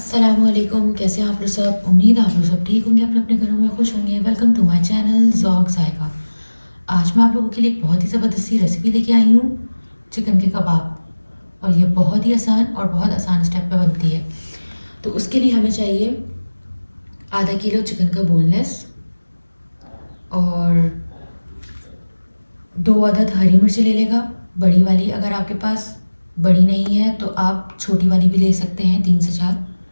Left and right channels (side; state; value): both; inverted; correlation -1.00